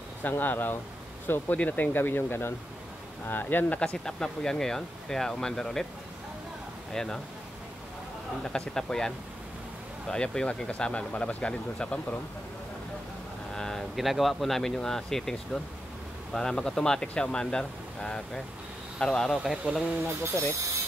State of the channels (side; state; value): both; normal; correlation 0.86